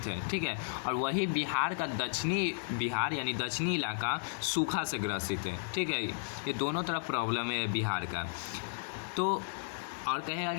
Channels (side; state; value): right; silent; 55 dB below the other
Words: है, ठीक है। और वही बिहार का दक्षिणी बिहार यानी दक्षिणी इलाका सूखा से ग्रसित है, ठीक है। ये दोनों तरफ प्रॉब्लम है बिहार का। तो और कहेगा